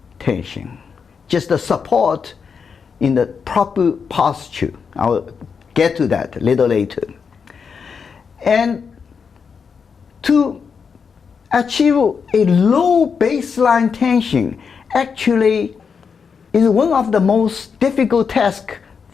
tension. Just the support in the proper posture. I'll get to that a little later. And to achieve a low baseline tension actually is one of the most difficult tasks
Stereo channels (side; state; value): right; quieter; 6.0 dB